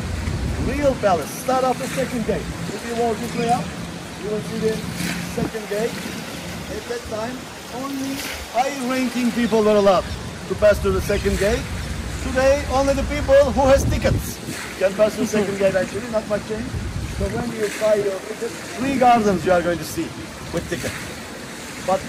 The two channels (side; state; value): both; identical; correlation 1.00